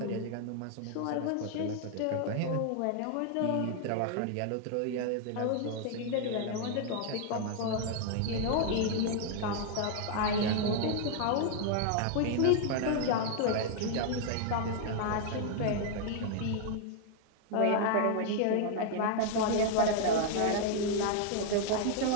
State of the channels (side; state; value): both; different; correlation 0.00